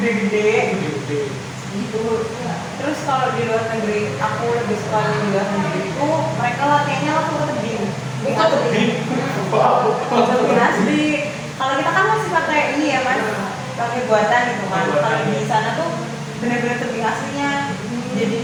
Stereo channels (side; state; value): both; identical; correlation 1.00